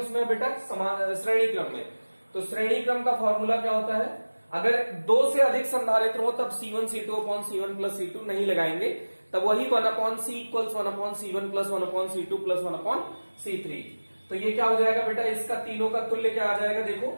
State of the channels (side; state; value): both; inverted; correlation -1.00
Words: है बेटा, समान श्रेणी क्रम में। तो श्रेणी क्रम का फॉर्मूला क्या होता है, अगर दो से अधिक संधारित्र हो तब C1 C2 upon C1 plus C2 नहीं लगाएंगे, तब वही 1/C equals 1/C1 plus 1/C2 plus 1/C3। तो ये क्या हो जाएगा बेटा, इसका तीनों का तुल्य क्या आ जाएगा, देखो